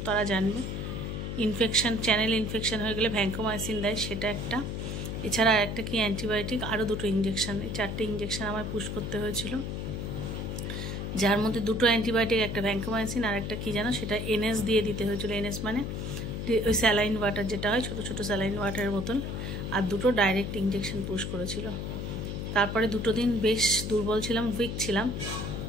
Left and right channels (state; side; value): noise; left; hum, 4 dB below the sound